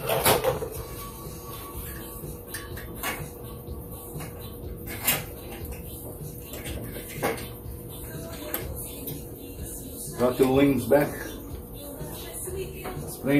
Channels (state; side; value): identical; both; correlation 1.00